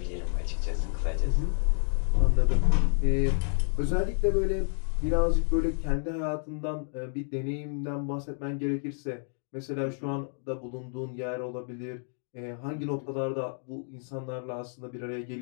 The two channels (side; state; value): right; silent; 58 dB below the other